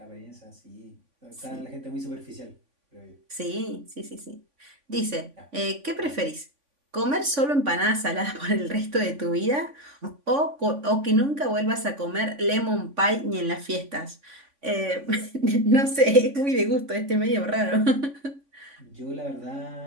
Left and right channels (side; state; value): left; late; 3.5 ms